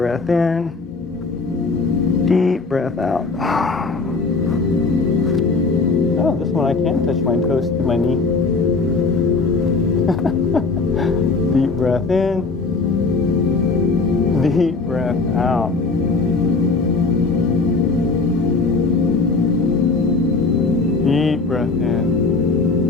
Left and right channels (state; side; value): quieter; right; 4.0 dB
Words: in. Deep breath out. Oh, this one I can touch my toes to my knee. Deep breath in, deep breath out. breath in.